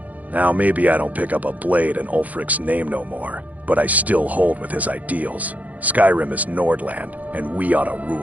Now maybe I don't pick up a blade in Ulfric's name no more, but I still hold with his ideals. Skyrim is Nordland, and we ought to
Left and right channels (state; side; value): late; left; 0.076 ms